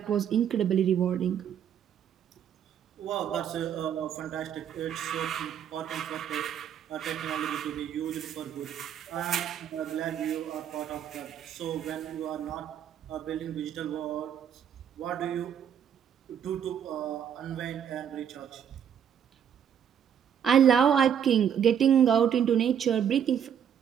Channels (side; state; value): left; quieter; 8.7 dB